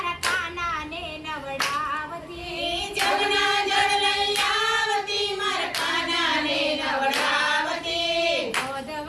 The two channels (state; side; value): identical; both; correlation 1.00